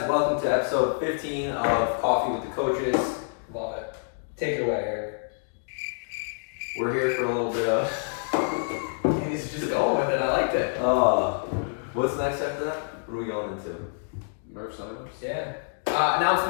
Welcome to episode 15 of Coffee with the Coaches. Love it. Take it away, Eric. We're here for a little bit of... He's just going with it. I liked it. What's next after that? What are we going into? Murph signups? Yeah.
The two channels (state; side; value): silent; right; digital silence